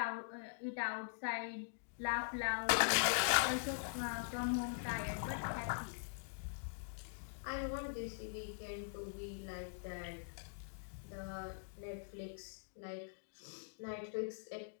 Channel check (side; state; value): right; silent; digital silence